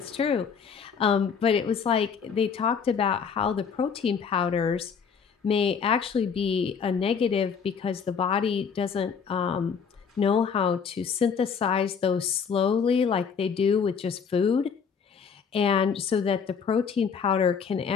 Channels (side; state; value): right; quieter; 6.4 dB